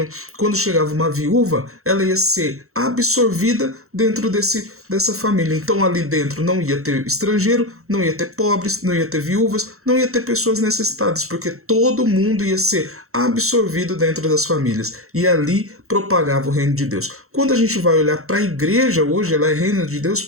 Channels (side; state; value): left; late; 0.63 ms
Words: quando chegava uma viúva, ela ia ser absorvida dentro dessa família. Então ali dentro não ia ter estrangeiro, não ia ter pobres, não ia ter viúvas, não ia ter pessoas necessitadas, porque todo mundo ia ser absorvido dentro das famílias. E ali propagava o reino de Deus. Quando a gente vai olhar para a igreja hoje, ela é reino de Deus